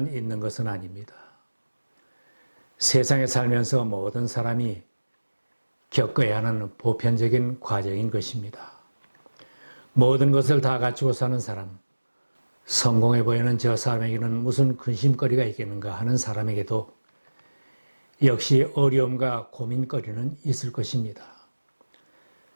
있는 것은 아닙니다. 세상에 살면서 모든 사람이 겪어야 하는 보편적인 과정인 것입니다. 모든 것을 다 갖추고 사는 사람, 성공해 보이는 저 사람에게는 무슨 근심거리가 있겠는가 하는 사람에게도 역시 어려움과 고민거리는 있을 것입니다.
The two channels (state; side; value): inverted; both; correlation -1.00